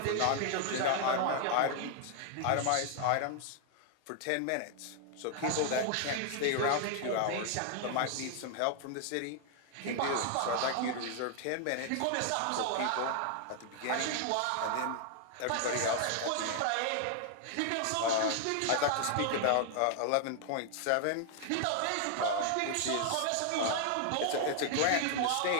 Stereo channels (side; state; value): both; different; correlation 0.00